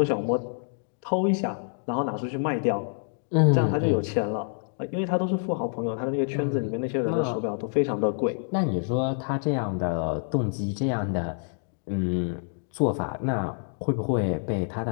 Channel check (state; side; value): silent; right; digital silence